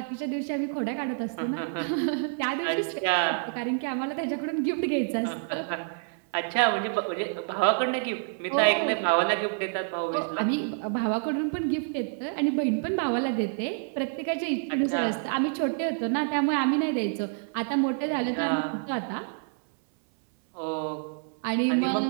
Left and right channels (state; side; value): silent; left; 59 dB below the other